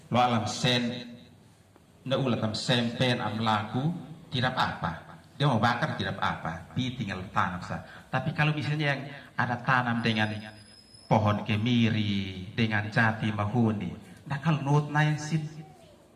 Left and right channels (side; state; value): both; identical; correlation 1.00